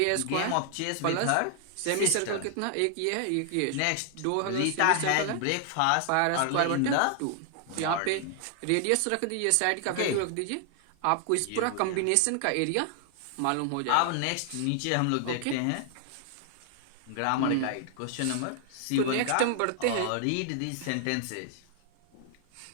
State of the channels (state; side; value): different; both; correlation 0.00